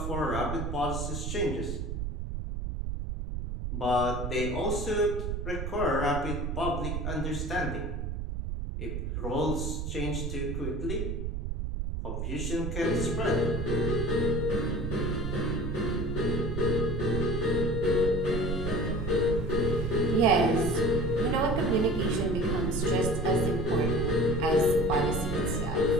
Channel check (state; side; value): noise; right; rumble, 3 dB below the sound